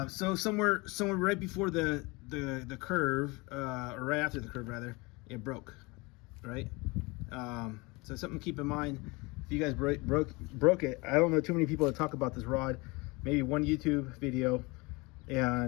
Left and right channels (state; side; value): quieter; right; 25.6 dB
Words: So somewhere right before the curve, or right after the curve rather, it broke, right? So something to keep in mind. If you guys broke it, I don't know too many people that talk about this rod. Maybe one YouTube video,